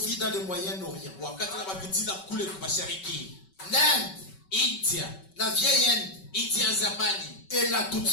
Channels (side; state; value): right; late; 5.3 ms